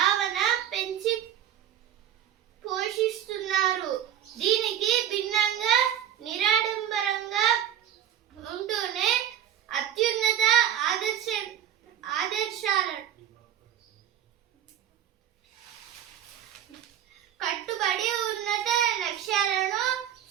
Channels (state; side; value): quieter; left; 10.3 dB